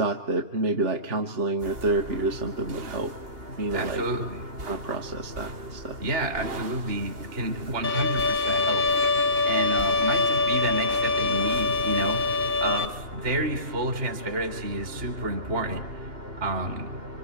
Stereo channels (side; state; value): left; late; 2.8 ms